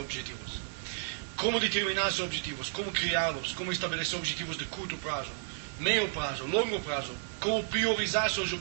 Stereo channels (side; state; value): left; silent; digital silence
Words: Como determinar seus objetivos, como criá-los, como estabelecer objetivos de curto prazo, meio prazo, longo prazo, como priorizar seus